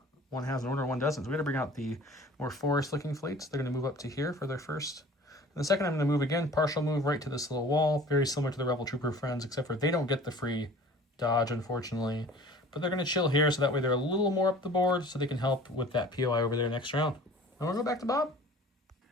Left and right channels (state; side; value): normal; both; correlation 0.45